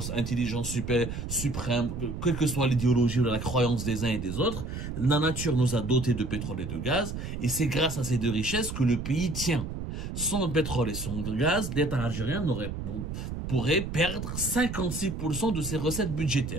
intelligence suprême, quelle que soit l'idéologie ou la croyance des uns et des autres, la nature nous a dotés de pétrole et de gaz, et c'est grâce à ces deux richesses que le pays tient. Sans pétrole et sans gaz, l'État algérien pourrait perdre 56% de ses recettes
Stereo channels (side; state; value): right; noise; rumble, 6 dB below the sound